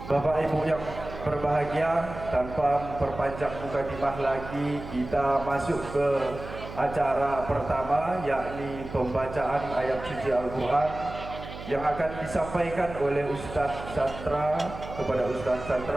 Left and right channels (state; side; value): noise; right; hum, 12 dB below the sound